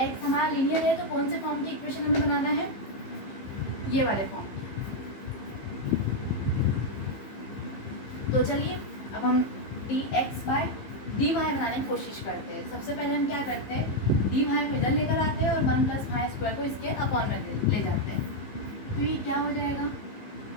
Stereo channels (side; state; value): right; late; 15 ms